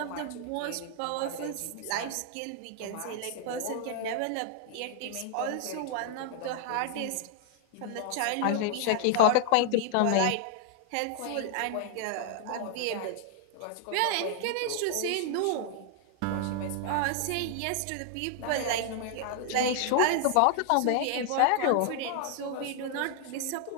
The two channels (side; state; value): both; different; correlation 0.00